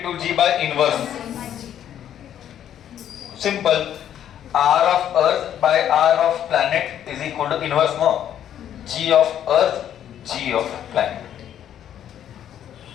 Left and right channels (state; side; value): quieter; right; 10.3 dB